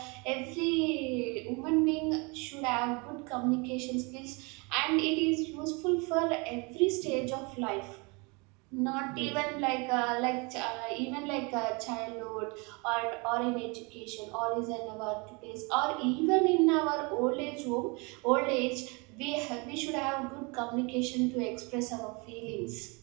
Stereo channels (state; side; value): quieter; left; 29.7 dB